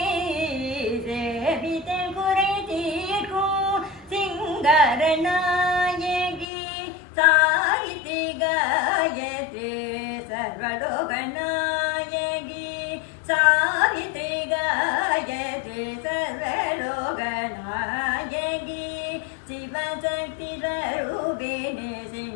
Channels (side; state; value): right; drops out; at 6.5 s